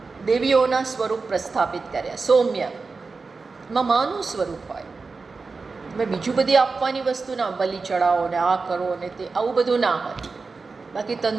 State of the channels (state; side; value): quieter; left; 4.3 dB